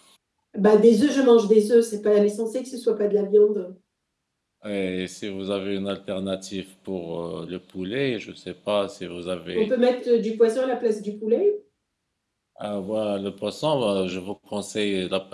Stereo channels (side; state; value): both; identical; correlation 1.00